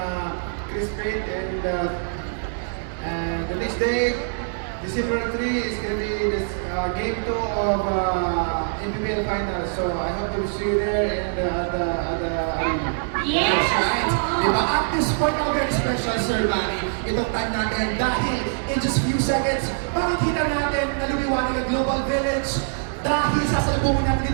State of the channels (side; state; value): left; silent; 63 dB below the other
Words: Chris Pate, and the next day, December 3 is going to be this game 2 of NBBL Finals. So I hope to see you there and at the arena. Yes! Right? Diba? At this point, now very special, Sir Manny, itong time natin dahil in just few seconds, makikita natin na lumiwanag ang Global Village dahil sasalubungin natin